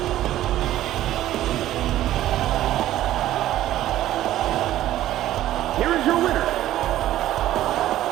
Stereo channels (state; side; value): quieter; left; 13.6 dB